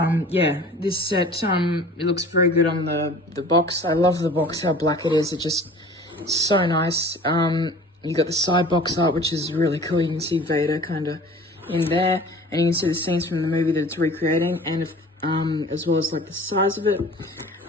yeah, this set, it looks very good on the box. I love the box, how black it is. It just so nice. You got the side box art, which is really cool. You can see Vader kind of in there, and you can see the scenes from the movie that it's recreating, and as well as like the size of it,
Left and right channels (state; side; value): normal; both; correlation 0.45